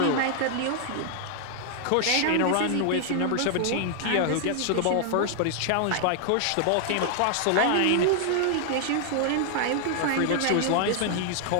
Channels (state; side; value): different; both; correlation 0.00